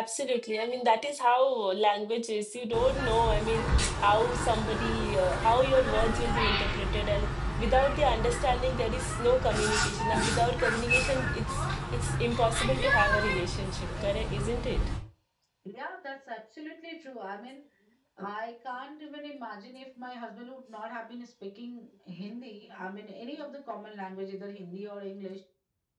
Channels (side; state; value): both; identical; correlation 1.00